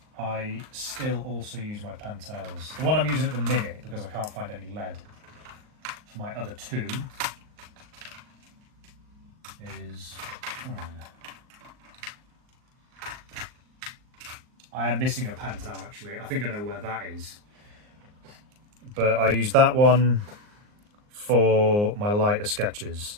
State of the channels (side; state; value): left; late; 39 ms